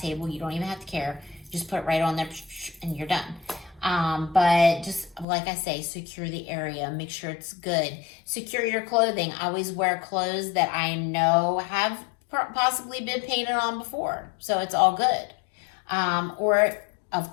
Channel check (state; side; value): drops out; right; at 5.2 s